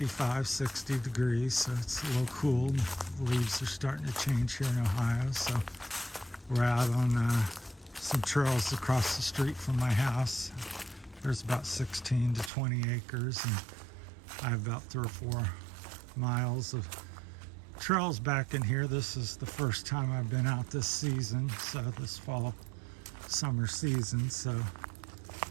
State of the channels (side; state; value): left; drops out; at 12.5 s